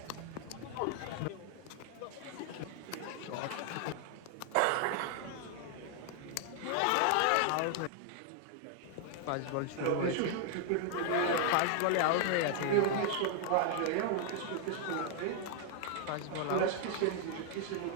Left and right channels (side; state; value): both; different; correlation 0.00